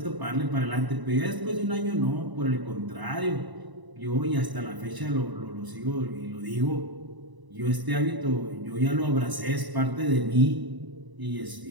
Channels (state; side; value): late; left; 1.0 ms